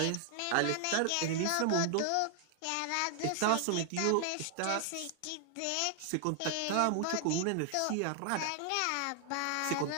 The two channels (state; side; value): different; both; correlation 0.00